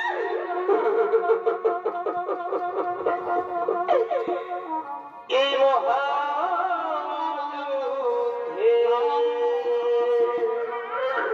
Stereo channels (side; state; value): both; identical; correlation 1.00